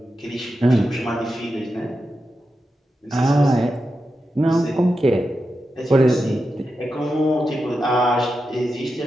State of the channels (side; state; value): both; normal; correlation 0.89